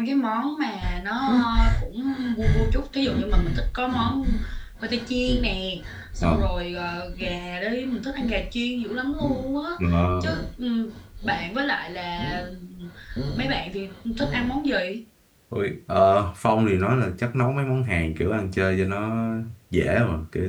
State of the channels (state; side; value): identical; both; correlation 1.00